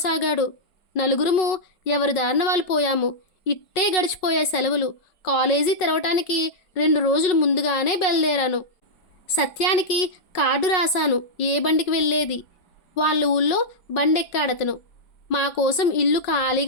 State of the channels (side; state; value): right; late; 5.4 ms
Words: నలుగురము ఎవరి దారిన వాళ్ళు పోయాము. ఇట్టే గడిచిపోయే సెలవులు. కాలేజీ తెరవటానికి 2 రోజులు ముందుగానే బయలుదేరాను. సత్యానికి కార్డు రాశాను ఏ బండికి వెళ్ళేది. వాళ్ళ ఊళ్ళో బండెక్కాడతను. మా కోసం ఇల్లు